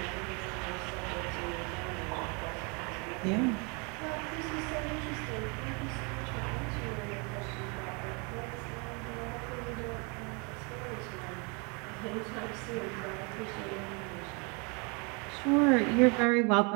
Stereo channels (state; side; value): quieter; left; 32.4 dB